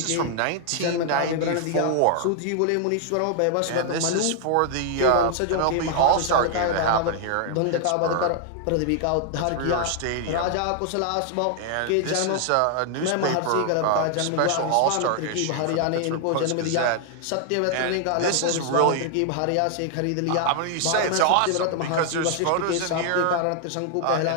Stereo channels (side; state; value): both; different; correlation 0.00